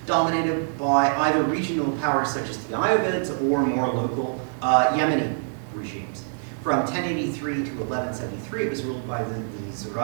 dominated by either regional powers such as the Ayyubids or more local Yemeni regimes. From 1083 to 1173, it was ruled by the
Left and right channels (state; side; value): silent; left; digital silence